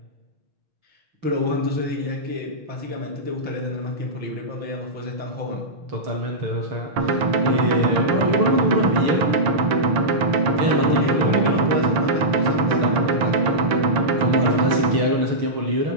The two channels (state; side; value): late; left; 6.6 ms